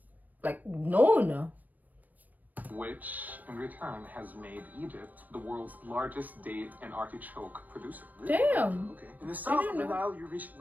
like known. Which, in return, has made Egypt the world's largest date and artichoke producer. Damn. Okay. In the south of the know. Nile, you reach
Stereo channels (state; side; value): late; left; 0.083 ms